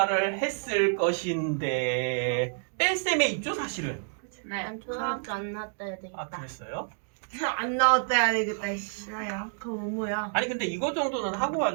했을 것인데 뺄셈에 있죠 사실은. 네. 난 초등학교 안 나왔다 해야 되겠다. 아 그랬어요? 안 나왔다 해야 되겠다. 싫어요. 그거 뭐야? 아니 근데 이거 정도는 하고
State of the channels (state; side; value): silent; left; digital silence